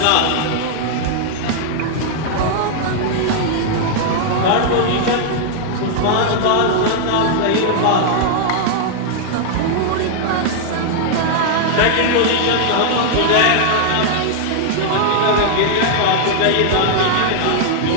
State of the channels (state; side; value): different; both; correlation -0.01